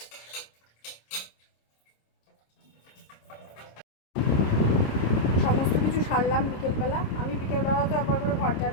সমস্ত কিছু সারলাম বিকেলবেলা। আমি বিকেলবেলা তো একবার করে ঘর ঝাড়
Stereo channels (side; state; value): right; late; 26 ms